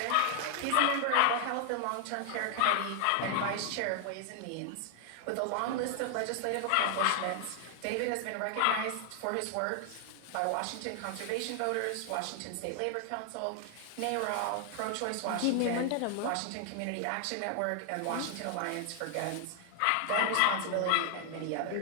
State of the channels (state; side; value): different; both; correlation 0.00